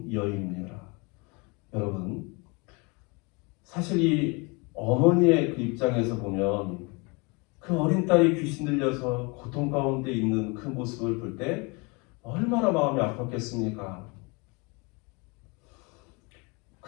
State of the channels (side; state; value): right; quieter; 29.3 dB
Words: 여인입니다. 여러분, 사실 이 어머니의 그 입장에서 보면 그 어린 딸이 귀신 들려서 고통 가운데 있는 그 모습을 볼 때 얼마나 마음이 아팠겠습니까?